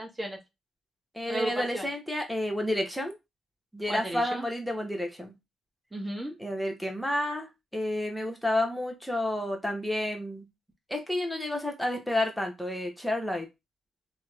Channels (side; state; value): both; normal; correlation 0.90